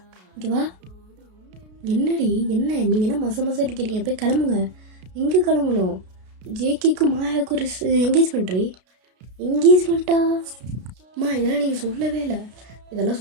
இங்கே வா. என்னடி என்ன நீங்கள் என்ன மச அடிக்கிறீங்க? போய் கிளம்புங்க. எங்கே கிளம்பணும்? ஜேகேக்கும் மாயாவுக்கும் ஒரு என்கேஜ்மெண்ட்டா? அம்மா இதெல்லாம் நீங்கள் சொல்லவே இல்லை. இதெல்லாம்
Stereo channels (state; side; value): late; left; 33 ms